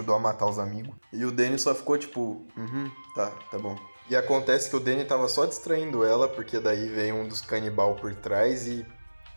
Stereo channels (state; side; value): inverted; both; correlation -1.00